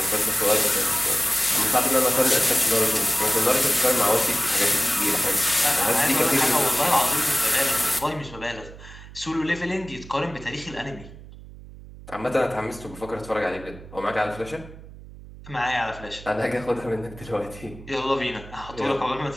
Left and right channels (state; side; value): noise; right; hum, 17 dB below the sound